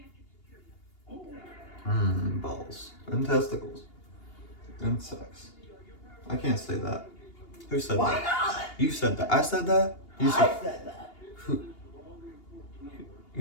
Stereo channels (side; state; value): right; late; 2.8 ms